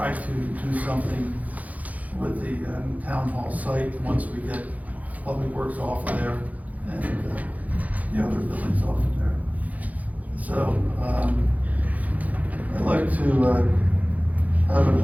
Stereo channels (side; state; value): left; late; 0.075 ms